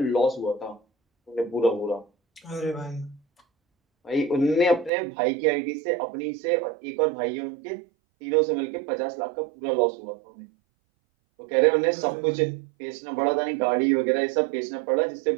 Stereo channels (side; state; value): left; drops out; at 4.9 s